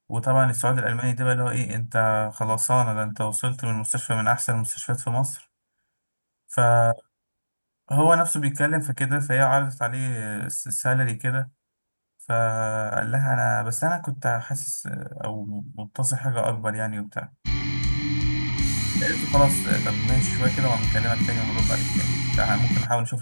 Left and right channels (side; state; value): both; inverted; correlation -1.00